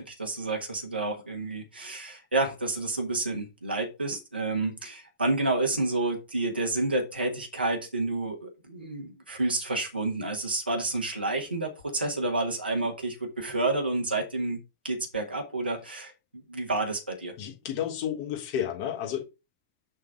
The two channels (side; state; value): both; inverted; correlation -0.50